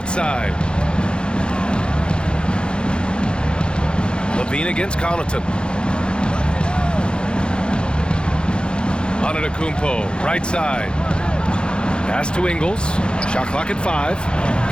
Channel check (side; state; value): right; late; 0.052 ms